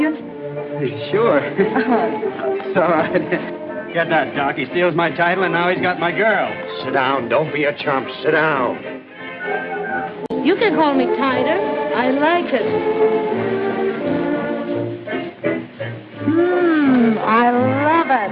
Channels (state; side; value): identical; both; correlation 1.00